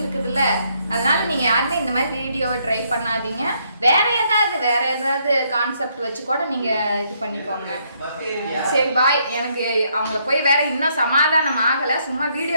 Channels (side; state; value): both; inverted; correlation -0.72